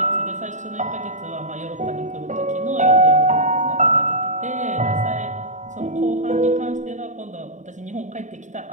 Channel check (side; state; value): left; late; 0.35 ms